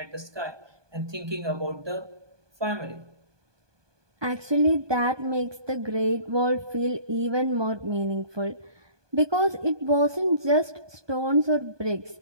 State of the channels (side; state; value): left; late; 1.2 ms